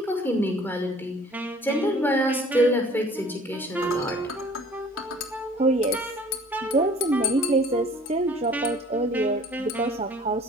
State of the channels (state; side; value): normal; both; correlation 0.51